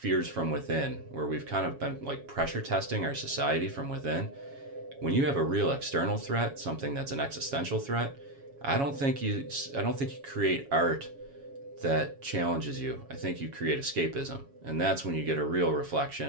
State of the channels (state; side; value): late; left; 7.2 ms